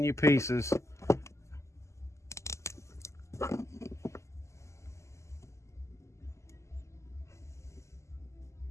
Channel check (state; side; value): late; right; 0.14 ms